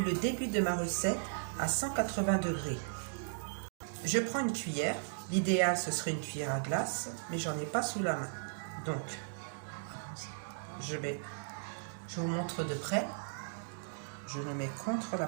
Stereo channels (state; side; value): silent; left; digital silence